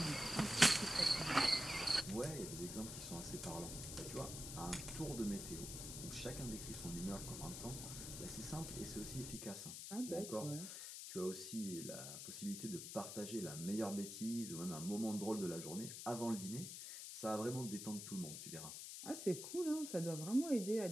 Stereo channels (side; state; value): left; noise; hiss, 7 dB below the sound